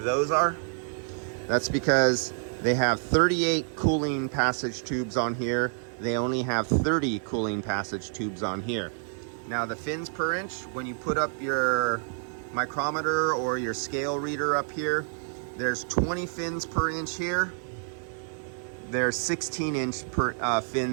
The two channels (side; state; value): left; silent; 59 dB below the other